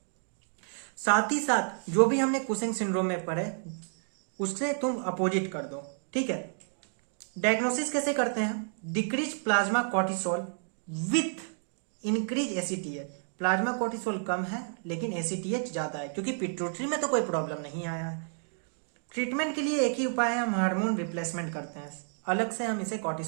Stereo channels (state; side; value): silent; left; 57 dB below the other